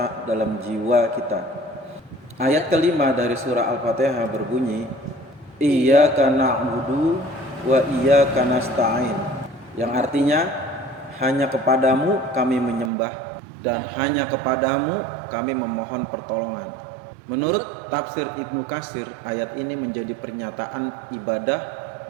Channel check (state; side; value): drops out; left; at 12.9 s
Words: dalam jiwa kita. Ayat kelima dari surah Al-Fatihah berbunyi, Iyyaka na'budu wa iyyaka nasta'in, yang artinya hanya kepadamu kami menyembah dan hanya kepadamu kami memohon pertolongan. Menurut tafsir Ibnu Katsir, ayat ini menjadi pernyataan ibadah